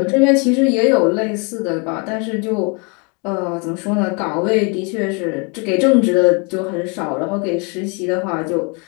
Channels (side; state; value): right; quieter; 33.6 dB